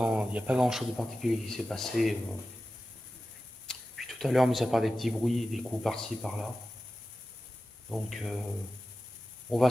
n'y a pas grand chose de particulier qui s'est passé. Puis tout à l'heure, mis à part des petits bruits, des coups par-ci, par-là. Donc, on va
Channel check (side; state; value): both; normal; correlation 0.94